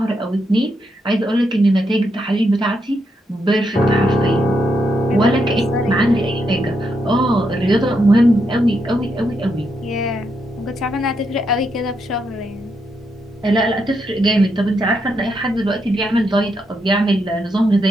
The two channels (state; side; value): normal; both; correlation 0.81